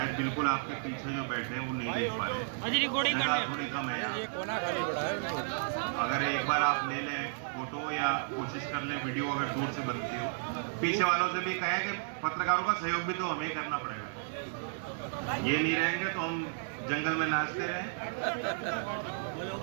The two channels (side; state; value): left; silent; digital silence